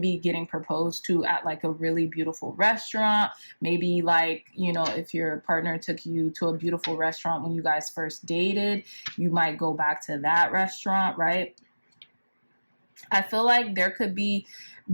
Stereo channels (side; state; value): both; inverted; correlation -1.00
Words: be getting proposed to at like a really beautiful restaurant. Maybe like, you know, if your partner took you to a beautiful restaurant when you guys first dated, you might go back to that restaurant, right? I feel like there could be,